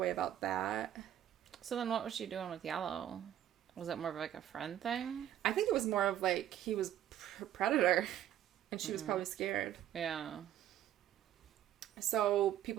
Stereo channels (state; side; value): quieter; left; 11.5 dB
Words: about that. So then what was she doing with Yellow? Was it more of, like, a friend thing? I think it was more of, like, he was a predator, and she was probably scared. Yeah. So